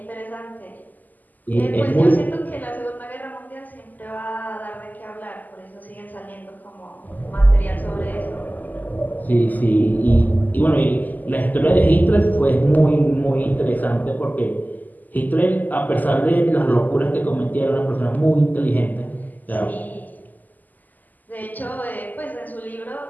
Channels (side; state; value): right; late; 0.083 ms